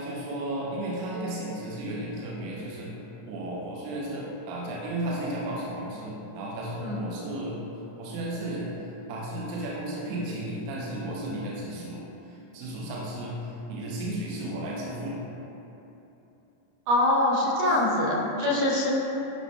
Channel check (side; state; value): left; late; 33 ms